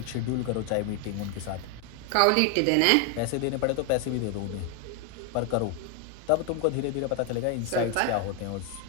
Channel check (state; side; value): different; both; correlation 0.00